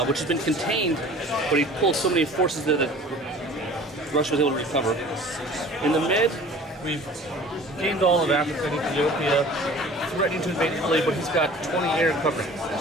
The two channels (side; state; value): both; normal; correlation 0.45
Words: which has been contained, but he pulled so many forces there that Russia was able to recover. In the mid, we've gained all of Africa and Ethiopia, threatening to invade Italy, but he's got 20 air coverage,